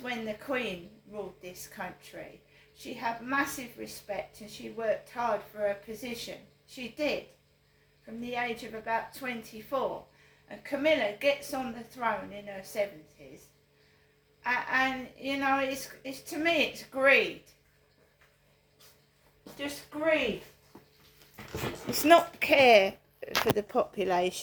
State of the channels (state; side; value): identical; both; correlation 1.00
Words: when the Queen ruled this country. She had massive respect and she worked hard for her position. She did, from the age of about 24. And Camilla gets on the throne in her 70s. And you know, it's to me, it's greed. Just greed. It's not care for the